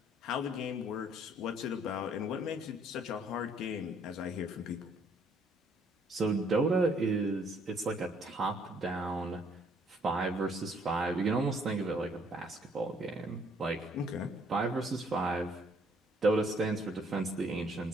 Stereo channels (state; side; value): normal; both; correlation 0.65